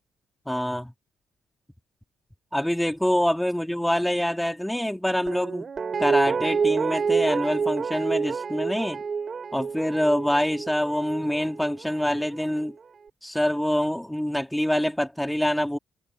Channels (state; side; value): normal; both; correlation 0.97